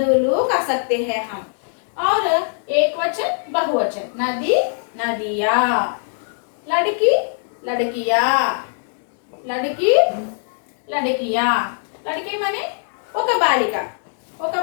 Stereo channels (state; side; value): silent; right; digital silence